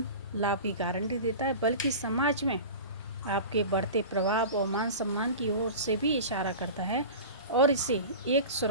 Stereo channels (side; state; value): both; inverted; correlation -0.33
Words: लाभ की गारंटी देता है बल्कि समाज में आपके बढ़ते प्रभाव और मान सम्मान की ओर से भी इशारा करता है और इसे एक